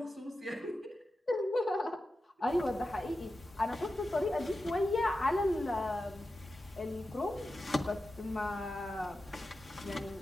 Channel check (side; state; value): both; normal; correlation 0.92